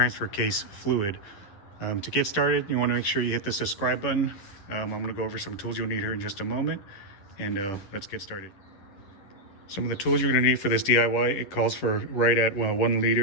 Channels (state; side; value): late; right; 10 ms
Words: case fluid. To get started, you want to make sure you hit the subscribe button. I'm going to go over some tools you'll need here in just a moment, and let's get started. Some of the tools you're going to need for this DIY, it calls for right at 1